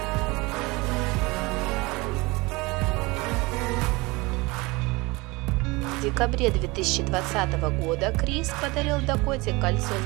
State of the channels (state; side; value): quieter; left; 24.0 dB